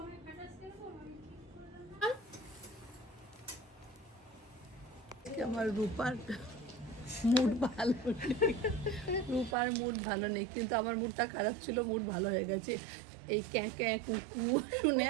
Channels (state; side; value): drops out; left; at 9.6 s